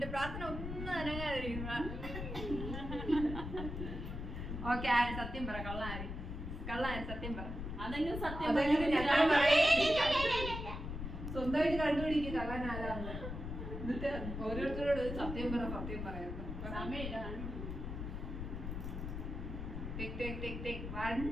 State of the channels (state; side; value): noise; left; rumble, 6 dB below the sound